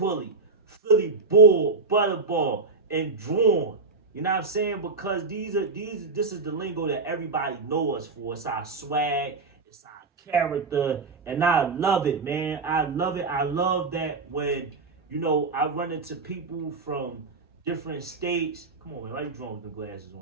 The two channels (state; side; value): quieter; left; 4.1 dB